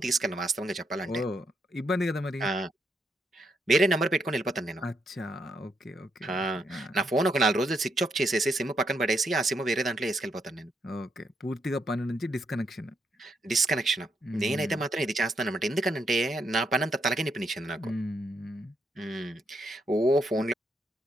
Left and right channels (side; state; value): both; normal; correlation 0.77